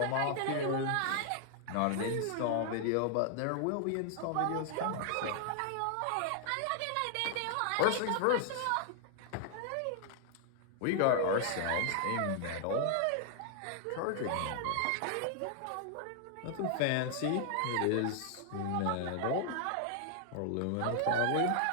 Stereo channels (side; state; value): both; different; correlation 0.00